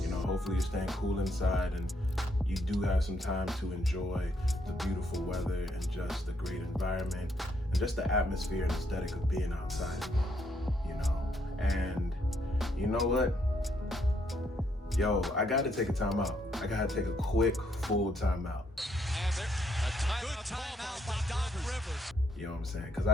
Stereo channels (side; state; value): both; normal; correlation 0.74